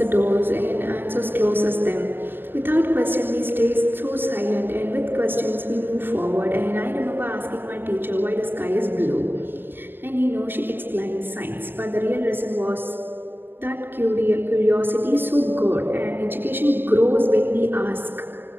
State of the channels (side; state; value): left; late; 0.098 ms